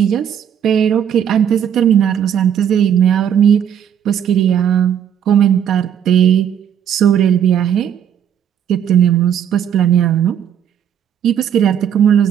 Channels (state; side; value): quieter; left; 9.0 dB